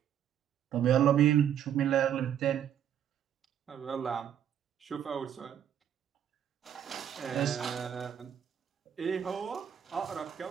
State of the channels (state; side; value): quieter; left; 9.5 dB